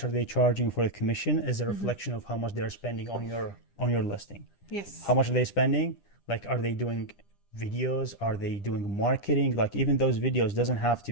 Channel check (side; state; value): right; late; 10 ms